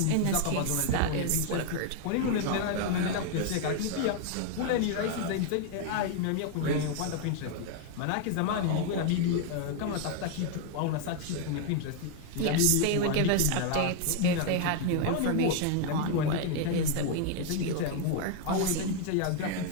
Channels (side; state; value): both; different; correlation 0.00